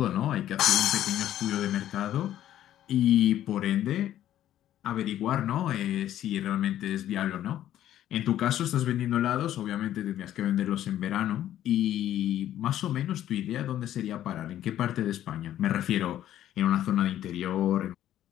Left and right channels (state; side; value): quieter; right; 12.1 dB